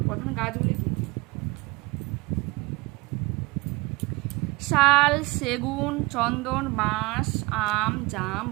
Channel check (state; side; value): quieter; left; 23.9 dB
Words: প্রধান গাছগুলি কি? শাল, সেগুন, চন্দন, বাঁশ, আম, জাম,